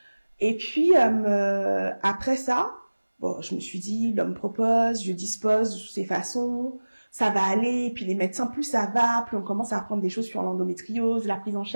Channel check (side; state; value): both; inverted; correlation -1.00